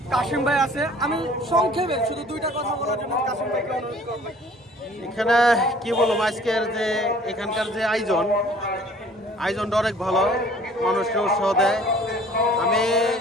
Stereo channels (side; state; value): both; normal; correlation 0.52